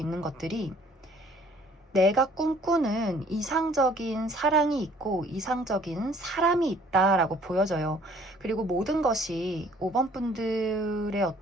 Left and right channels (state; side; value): normal; both; correlation 0.57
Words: 것들이 내가 꿈꾸는 이상적인 사랑이 있고 이상적인 사람이 있다라고 보여져요. 그리고 모든 것이 5번 분들의